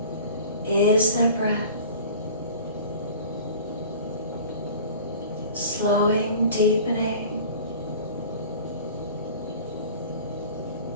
Is there breath? Slowing, deepening.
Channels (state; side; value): inverted; both; correlation -0.41